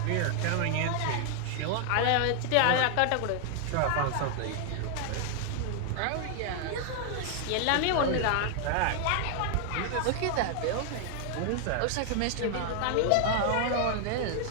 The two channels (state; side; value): different; both; correlation 0.00